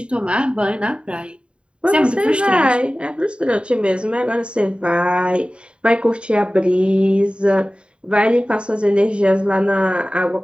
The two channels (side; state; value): left; late; 0.055 ms